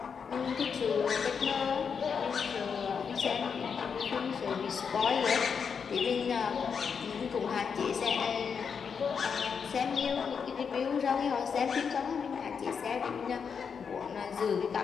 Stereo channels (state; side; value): quieter; right; 6.4 dB